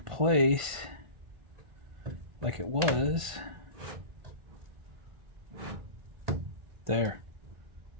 like it was. There.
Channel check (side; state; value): left; late; 1.5 ms